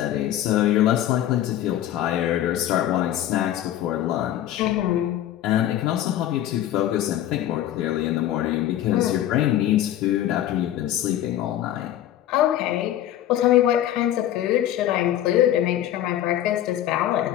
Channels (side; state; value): right; quieter; 12.3 dB